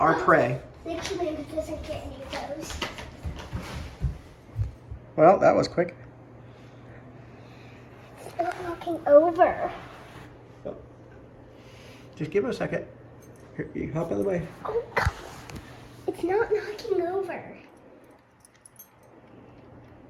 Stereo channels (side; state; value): both; identical; correlation 1.00